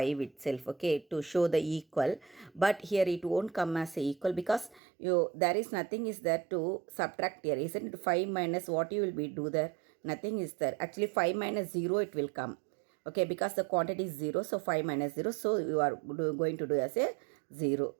itself. Okay, to show the equal, but here it won't come as a equal because there is nothing is there to subtract here, isn't it? 5 minus what you will be do there? Nothing is there. Actually 5 minus 0 it will come. Okay, because the quantity is 0, so 5 minus 0, so you are going to do as a 0,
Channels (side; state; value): left; drops out; at 4.8 s